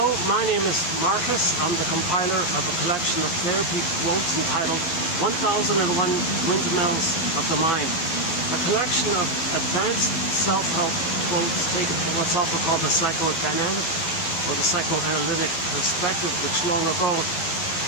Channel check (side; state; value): right; late; 12 ms